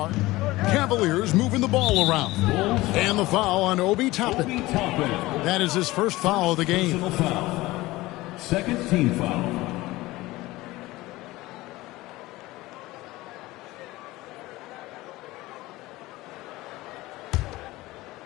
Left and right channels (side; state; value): right; quieter; 19.2 dB